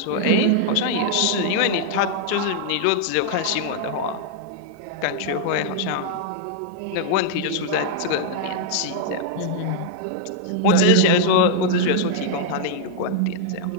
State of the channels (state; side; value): different; both; correlation 0.00